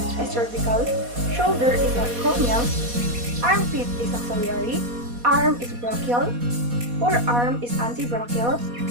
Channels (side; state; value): left; late; 4.2 ms